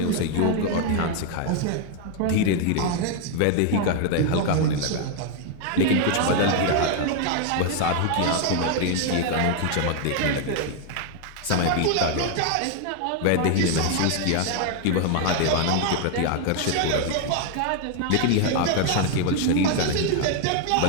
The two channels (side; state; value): both; different; correlation 0.00